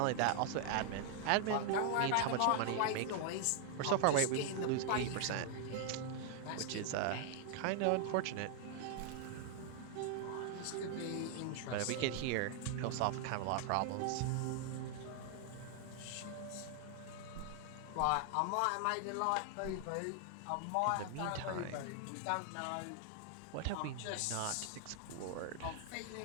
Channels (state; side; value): different; both; correlation 0.00